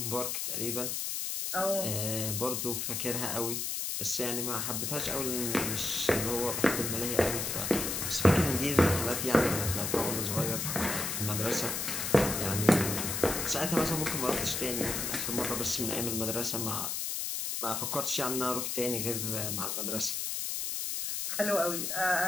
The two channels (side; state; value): left; noise; hiss, 2 dB below the sound